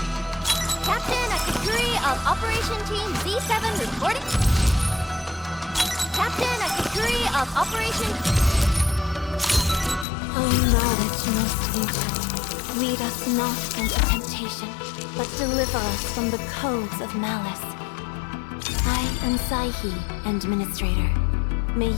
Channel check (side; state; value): right; drops out; at 10.1 s